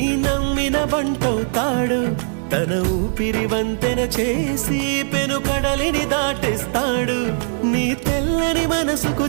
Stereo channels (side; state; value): left; silent; digital silence